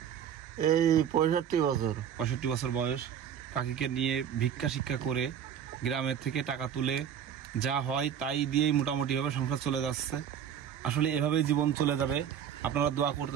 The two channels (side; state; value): left; quieter; 8.8 dB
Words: এই 65 বছর। 65 বছর বয়স। কাকিকে নিয়ে ভিক্ষা শিক্ষা করে গ্রামের থেকে টাকা তুলে যা হয় তাই দিয়েই মোটামুটি ভাবে সংসার চলে যাচ্ছে। আসলে এভাবেই জীবন চলে যাবে। আপনারা দোয়া করতে